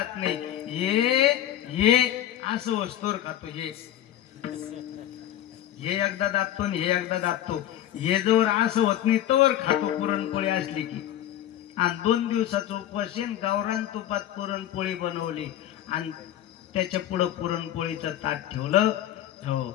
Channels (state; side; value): quieter; right; 12.1 dB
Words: नाही, हे असं वस्तूवर खातो, हे एकदा दाबतो आणि हे एकदा दाबतो. हे जवळ असं होत नाही तवर खातो पुरणपोळी असली की. आणि 2 दिवसाचं उपवास गावरान तुपात पुरणपोळी बनवली आणि त्याच्या पुढं पुरणपोळीचं ताट ठेवलं. हो,